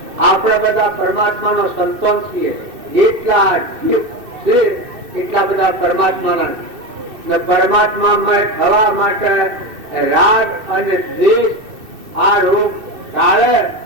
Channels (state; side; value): late; left; 2.6 ms